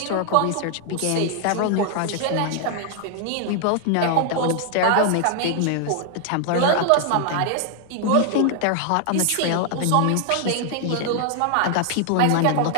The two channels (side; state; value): both; different; correlation 0.00